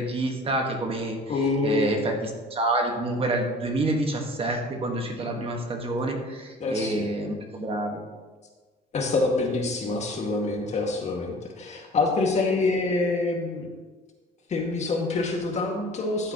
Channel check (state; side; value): normal; both; correlation 0.45